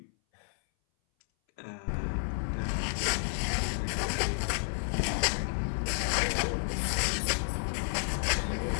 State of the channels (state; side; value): silent; right; 57 dB below the other